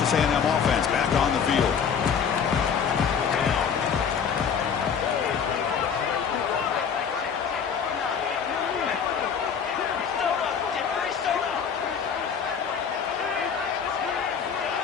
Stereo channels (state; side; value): quieter; right; 7.0 dB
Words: A&M offense back on the field.